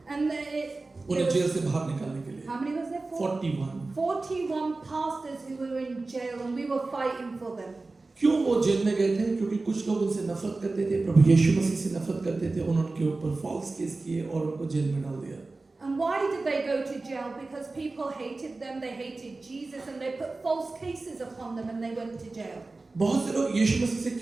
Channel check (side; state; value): left; quieter; 3.4 dB